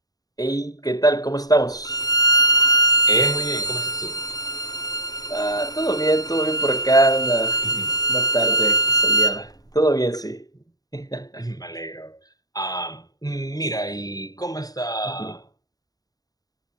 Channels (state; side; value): late; right; 0.18 ms